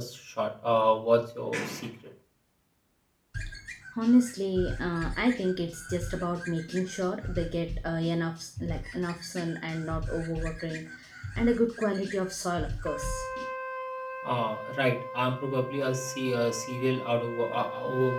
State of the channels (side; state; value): both; identical; correlation 1.00